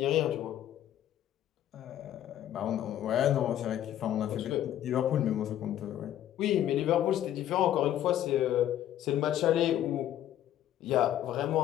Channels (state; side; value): quieter; right; 11.8 dB